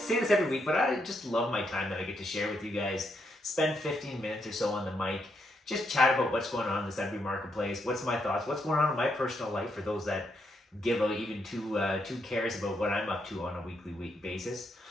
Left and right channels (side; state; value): both; normal; correlation 0.78